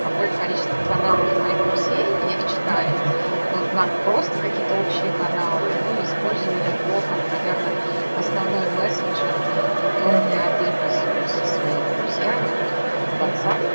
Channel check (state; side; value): inverted; both; correlation -1.00